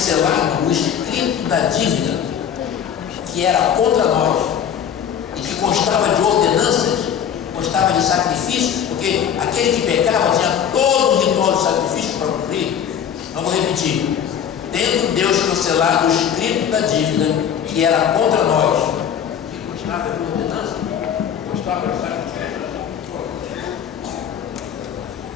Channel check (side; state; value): right; quieter; 8.6 dB